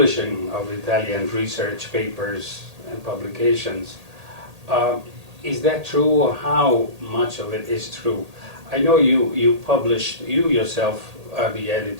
of Italian research papers and publications. Is that true, or how much of it is true? I know you yourself are the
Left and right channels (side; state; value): left; late; 1.8 ms